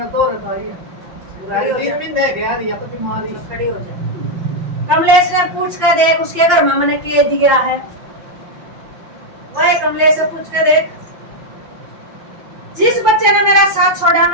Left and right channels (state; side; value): late; left; 5.7 ms